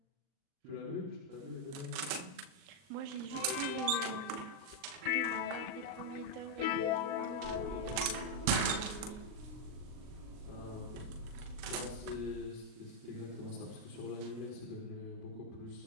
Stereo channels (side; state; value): left; late; 39 ms